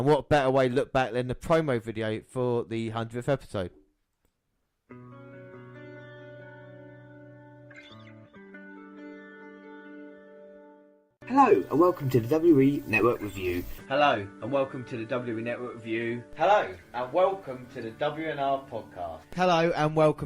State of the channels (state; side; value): identical; both; correlation 1.00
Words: what better way to look back than the promo video for the 100th episode. Hello and welcome to the WE Network Review. Hello and welcome to the WE Network Review. Hello and welcome to the WNR podcast. Hello and